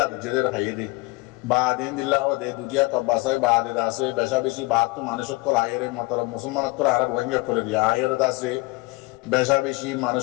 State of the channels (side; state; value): right; quieter; 23.9 dB